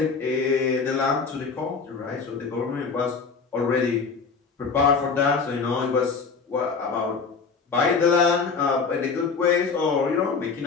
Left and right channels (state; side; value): quieter; right; 5.1 dB